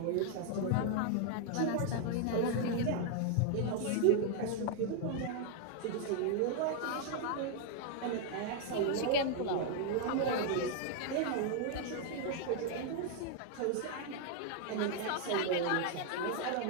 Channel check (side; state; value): both; different; correlation 0.00